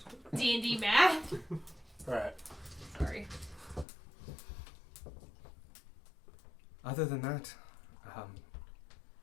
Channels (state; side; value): drops out; right; at 3.9 s